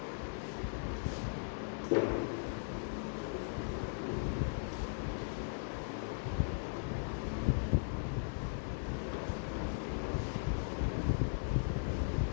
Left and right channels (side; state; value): right; silent; digital silence